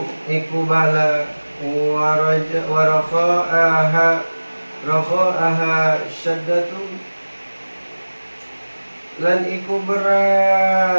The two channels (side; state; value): both; inverted; correlation -1.00